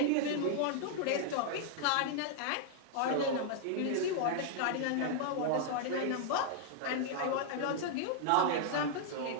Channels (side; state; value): both; different; correlation -0.01